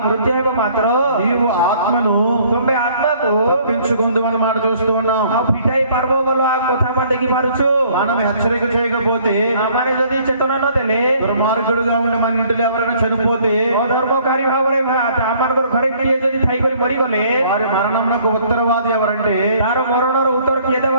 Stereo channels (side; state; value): both; inverted; correlation -0.59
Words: మృତ୍ୟు ହେବ ମାତ୍ର నీవు ఆత్మను ତୁମେ ଆତ୍ମାକୁ తప్పించుకుందు అని మాట చూస్తూ ఉన్నాం. ଆଉ ଫିଟାଇ ପାରିବ ବୋଲି ఆ କଥା ଆମେ ଦେଖିପାରୁଛୁ। మనం హెచ్చరిక చేయకపోతే ଆମେ ଯଦି ଚେତନା ନ ଦେଲେ దుర్మార్గుడుగా ఉండి మన ఇంటిలో ఎవరైనా చనిపోతే ଅଧର୍ମକାରୀ ଭାବରେ ଆମମାନଙ୍କର ଘରେ କିଏ ଯଦି ଥାଇକରି ମରିଗଲେ వారి మరణమునకు ఉత్తరవాది ఎవరంటే ତାର ମରଣର ଉତ୍ତର କିଏ